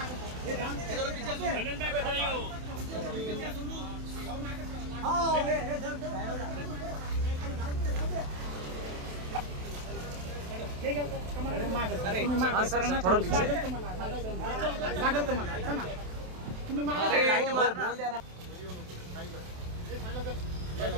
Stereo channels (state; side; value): late; left; 27 ms